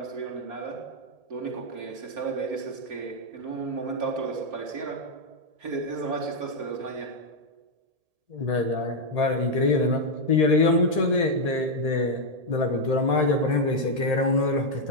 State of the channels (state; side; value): late; left; 1.8 ms